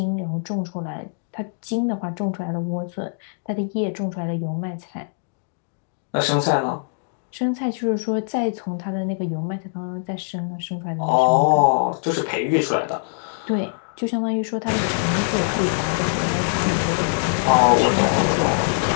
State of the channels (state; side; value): silent; right; digital silence